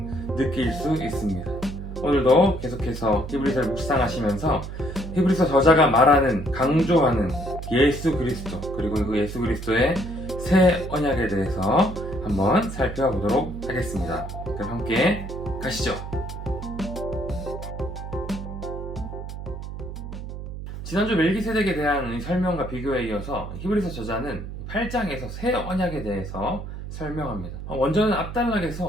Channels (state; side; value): noise; right; hum, 8 dB below the sound